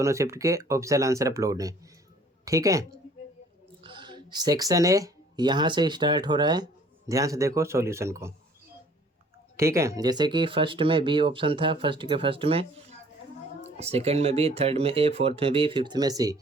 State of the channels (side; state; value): both; normal; correlation 0.55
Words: शिफ्ट के ऑफिशियल आंसर अपलोड हैं। ठीक है। सेक्शन ए यहाँ से स्टार्ट हो रहा है, ध्यान से देखो सॉल्यूशन को। ठीक है। जैसे कि फर्स्ट में बी ऑप्शन था, फर्स्ट के फर्स्ट में, सेकंड में बी, थर्ड में ए, फोर्थ में बी, फिफ्थ में सी।